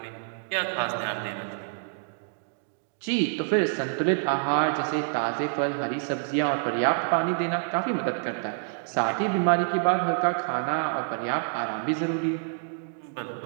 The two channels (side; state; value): left; silent; digital silence